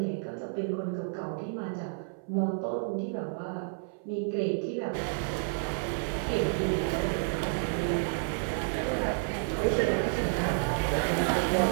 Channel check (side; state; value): left; silent; 57 dB below the other